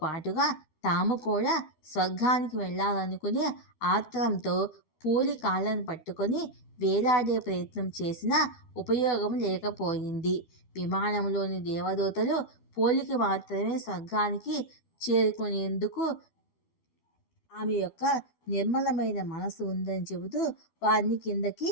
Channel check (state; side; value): late; right; 12 ms